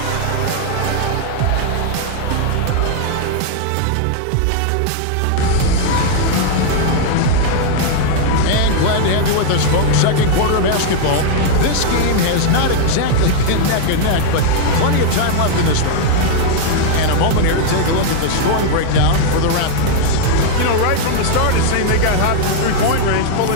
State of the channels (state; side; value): different; both; correlation 0.00